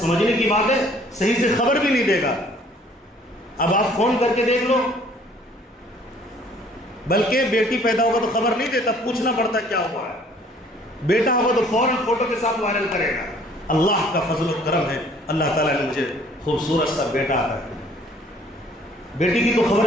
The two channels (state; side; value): normal; both; correlation 0.57